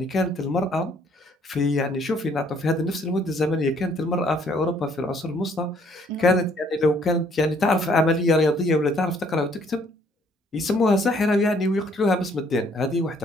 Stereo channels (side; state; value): both; normal; correlation 0.64